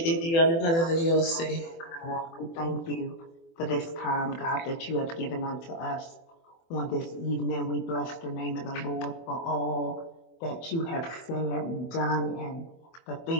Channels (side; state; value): right; late; 24 ms